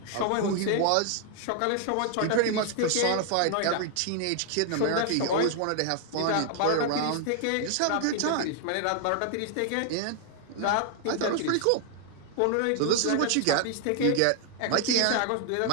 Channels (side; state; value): both; different; correlation 0.00